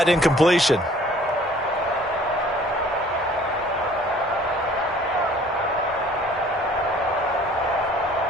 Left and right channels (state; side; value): normal; both; correlation 0.53